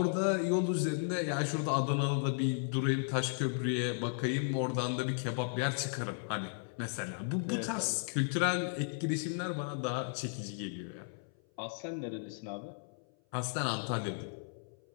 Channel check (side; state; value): right; silent; 54 dB below the other